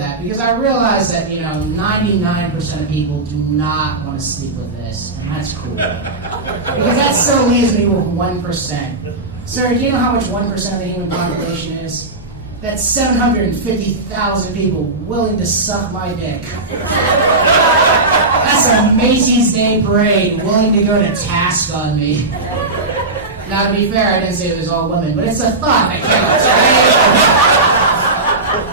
because I realize that, 99% of people do not want to sleep with this, and that's cool. Because that still leaves me with 1%. Sir, do you know how much 1% of the human population is? That's 750,000 people willing to suck my dick. That's a Macy's Day Parade willing to go to task on me. Now, to be fair, I didn't say it was all women, but it's a thought that counts, right?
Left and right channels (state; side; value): quieter; left; 3.1 dB